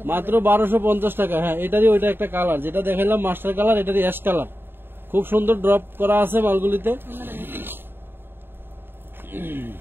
মাত্র 1250 টাকা। হ্যাঁ, এটারই ওইটা একটা কালার যেটা দেখাইলাম মাস্টার কালার, এটারই অ্যাশ কালার, খুব সুন্দর ড্রপ করা আছে মালগুলিতে।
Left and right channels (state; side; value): late; left; 0.10 ms